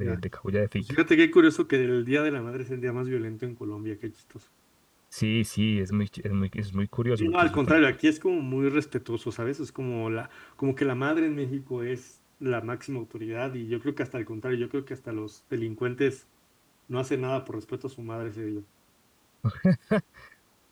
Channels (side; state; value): both; identical; correlation 1.00